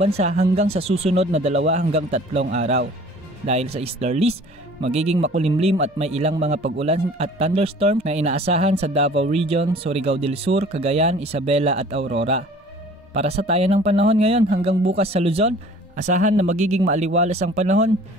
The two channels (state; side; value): normal; both; correlation 0.49